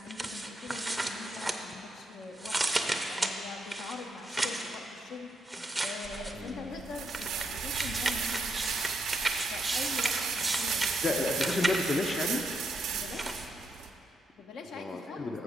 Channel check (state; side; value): normal; both; correlation 0.79